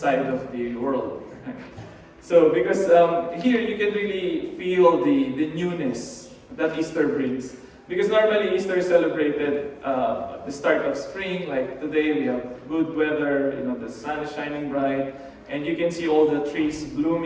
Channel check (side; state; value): both; identical; correlation 1.00